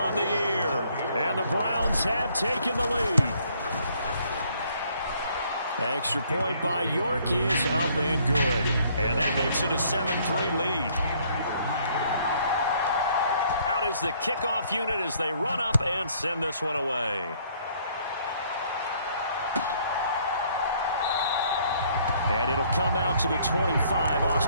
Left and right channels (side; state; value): both; inverted; correlation -0.64